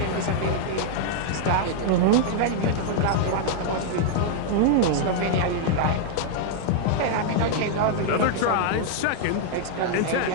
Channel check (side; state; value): both; different; correlation -0.01